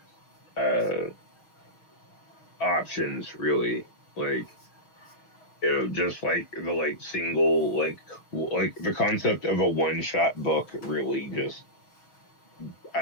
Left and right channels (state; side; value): late; right; 6.3 ms